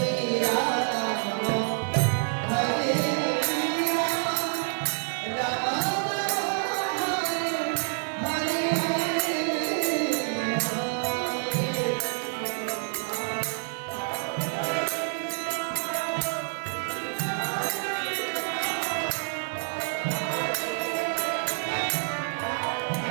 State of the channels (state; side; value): silent; left; 56 dB below the other